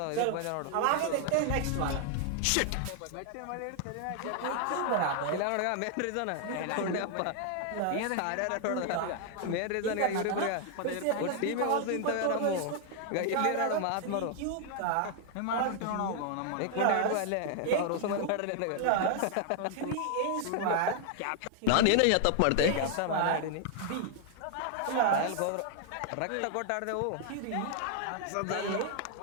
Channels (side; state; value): both; different; correlation 0.00